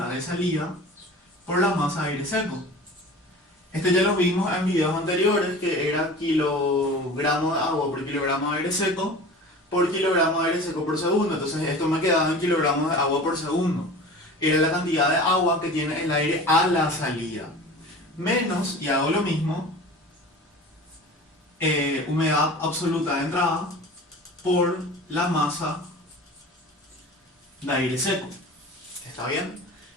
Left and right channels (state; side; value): normal; both; correlation 0.38